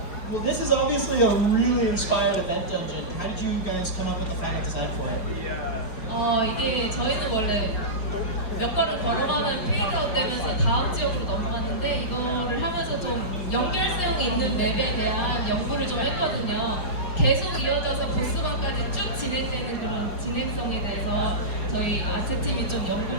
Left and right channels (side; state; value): right; late; 4.7 ms